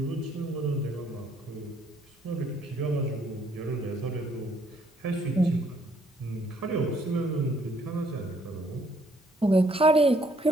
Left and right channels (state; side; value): normal; both; correlation 0.67